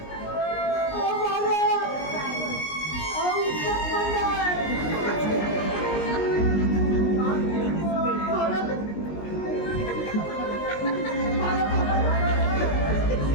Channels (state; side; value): late; right; 19 ms